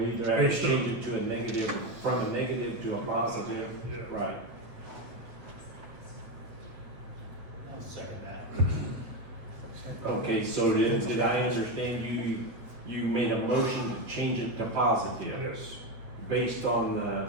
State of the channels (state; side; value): late; left; 8.2 ms